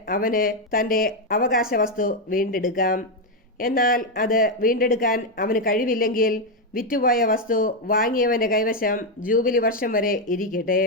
അവന് തന്റെ അവകാശ വസ്തു വീണ്ടെടുക്കാം. എന്നാൽ അത് വീണ്ടെടുക്കാൻ അവന് കഴിവില്ലെങ്കിൽ വിറ്റുപോയ വസ്തു വാങ്ങിയവന്റെ കൈവശം ജൂബിലി വർഷം വരെ ഇരിക്കട്ടെ.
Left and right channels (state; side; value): normal; both; correlation 0.04